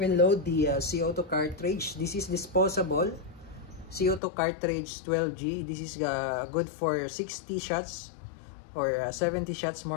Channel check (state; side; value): drops out; right; at 4.2 s